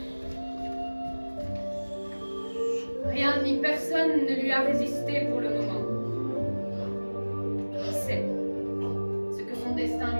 Rien ni personne ne lui a résisté pour le moment. Qui sait ce que son destin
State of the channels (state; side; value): inverted; both; correlation -1.00